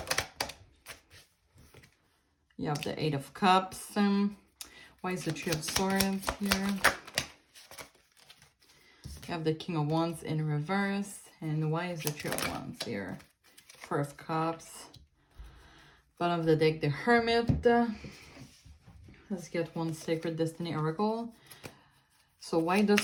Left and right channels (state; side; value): identical; both; correlation 1.00